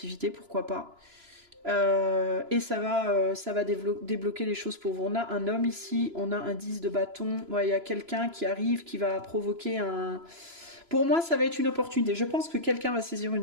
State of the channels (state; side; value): late; left; 3.0 ms